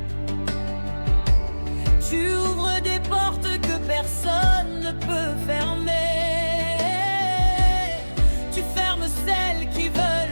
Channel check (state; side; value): inverted; both; correlation -1.00